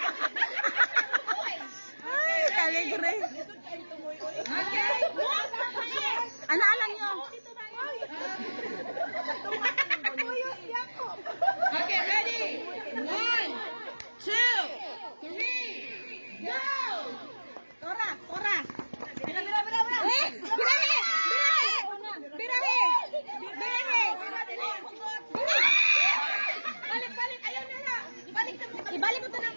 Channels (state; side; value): inverted; both; correlation -1.00